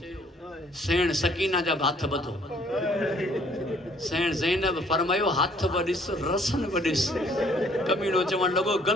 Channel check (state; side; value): normal; both; correlation 0.61